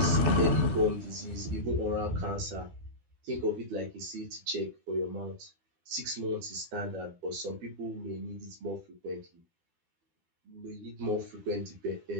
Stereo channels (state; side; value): late; left; 12 ms